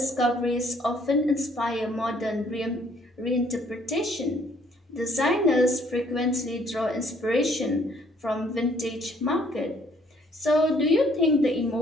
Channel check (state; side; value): normal; both; correlation 0.63